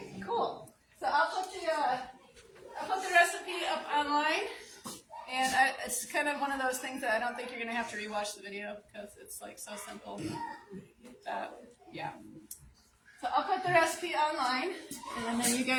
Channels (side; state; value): both; identical; correlation 1.00